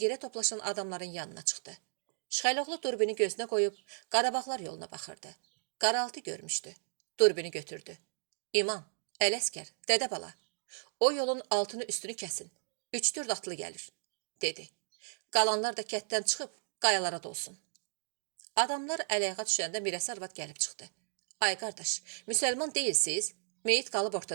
yerə toplaşan adamların yanına çıxdı. Şıxəloğlu durbini gözünə qoyub, Qarabağlar yoluna baxırdı. Qaraltı görmüşdü. Durbini götürdü. İman, Ələskər, dədə bala, o yolun altını üstünü kəsin. 3-4 atlı gəlir, dedi. Qalanlar da kətdən çıxıb, qayalara dolsun. Adamlar ələyəğa düşəndə Mirəsə arvad gəlib çıxdı. Ay qardaş, müsəlman deyilsiz, meyit qalıb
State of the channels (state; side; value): silent; left; digital silence